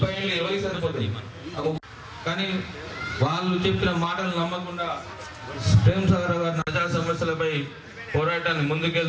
ఏళ్ళు ఎవరికి సరిపోతాయి. కానీ వాళ్ళు చెప్పిన మాటలు నమ్మకుండా ప్రేమ్ సాగర్ గారి ప్రజా సమస్యలపై పోరాటాన్ని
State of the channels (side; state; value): both; identical; correlation 1.00